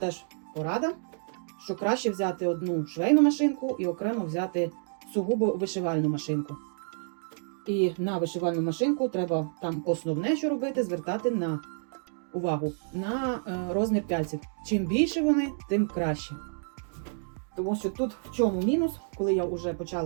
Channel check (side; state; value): left; silent; digital silence